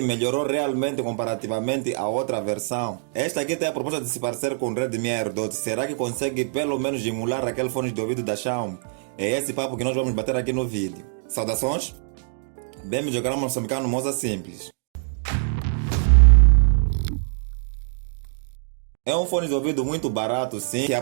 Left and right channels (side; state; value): left; silent; digital silence